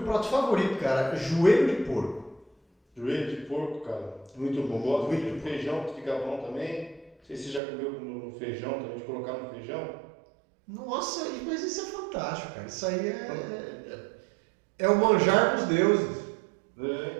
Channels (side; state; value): left; drops out; at 7.6 s